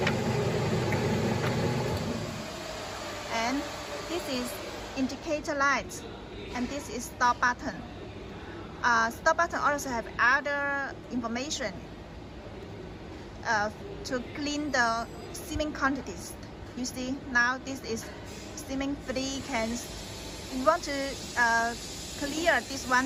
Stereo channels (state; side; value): identical; both; correlation 1.00